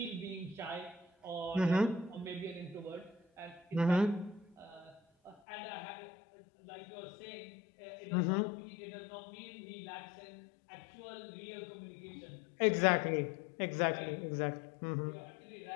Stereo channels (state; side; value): drops out; right; at 5.4 s